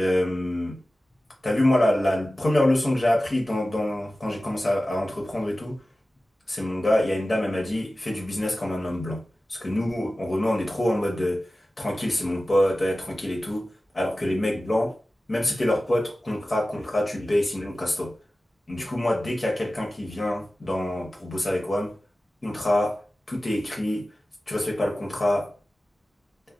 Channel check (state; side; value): normal; both; correlation 0.96